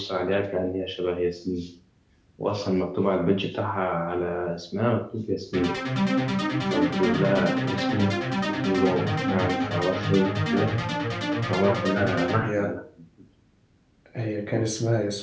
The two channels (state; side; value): identical; both; correlation 1.00